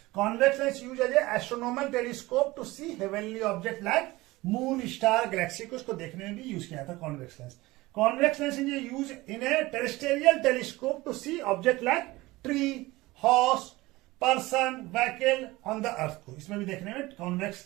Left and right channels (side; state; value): left; quieter; 20.0 dB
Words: Convex lens use as a astronomical telescope to see heavenly object like moon, star, galaxy को, उसको देखने में भी यूज किया जाता है convex lens. Convex lens is use in a terrestrial telescope to see object like tree, horse, person, vehicle on the earth को, इसमें भी देखने में कॉन्वेक्स